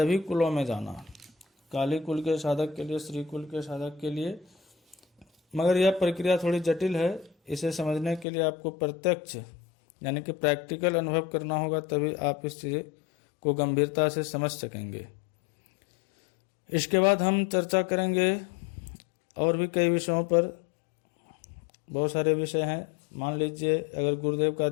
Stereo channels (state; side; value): drops out; right; at 8.2 s